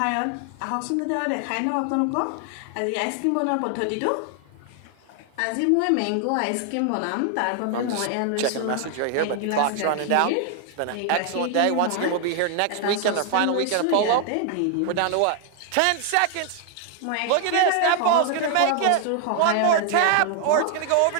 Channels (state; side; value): different; both; correlation 0.00